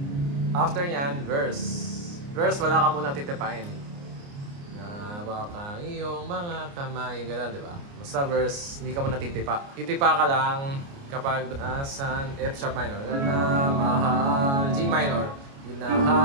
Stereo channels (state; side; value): late; left; 29 ms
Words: After nyan, verse. Verse, wala ka muna titipain. Na baka iyong mga kamay, gano'n, di ba? Basta verse, hindi ka muna titipa. Titipa ka lang kapag nasan F sharp minor. Na mahal, G minor.